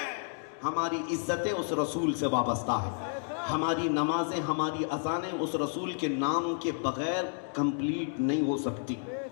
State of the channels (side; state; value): right; silent; digital silence